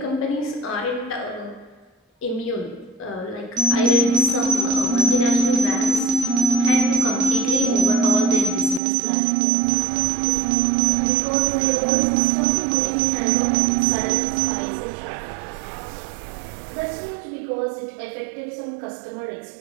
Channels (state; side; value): drops out; left; at 8.8 s